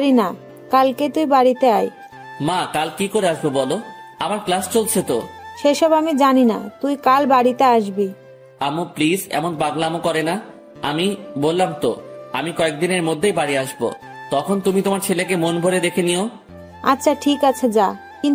না, কালকে তুই বাড়িতে আয়। মা কাল কি করে আসবো বলো, আমার ক্লাস চলছে তো। সেসব আমি জানি না, তুই কাল বাড়িতে আসবি। আম্মু প্লিজ এমন পাগলামো করে না। আমি বললাম তো আমি কয়েকদিনের মধ্যেই বাড়ি আসবো, তখন তুমি তোমার ছেলেকে মন ভরে দেখে নিও। আচ্ছা ঠিক আছে যা,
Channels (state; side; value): identical; both; correlation 1.00